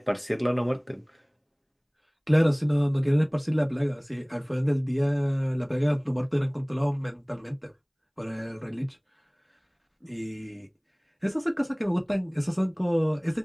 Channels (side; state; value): both; identical; correlation 1.00